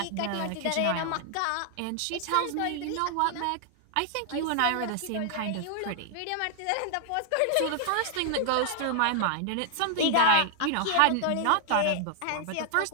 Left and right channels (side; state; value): both; different; correlation 0.00